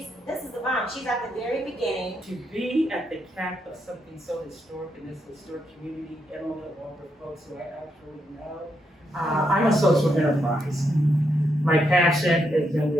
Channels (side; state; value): both; normal; correlation 0.80